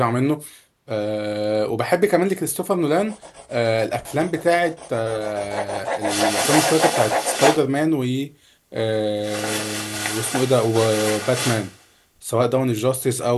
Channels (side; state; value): both; identical; correlation 1.00